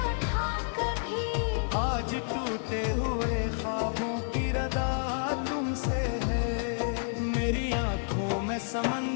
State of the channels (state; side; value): silent; right; digital silence